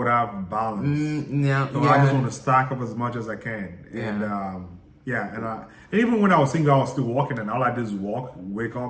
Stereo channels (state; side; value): identical; both; correlation 1.00